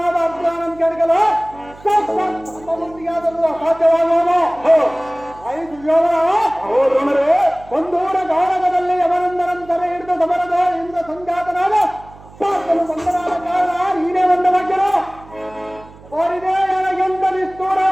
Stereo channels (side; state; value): right; noise; hum, 22 dB below the sound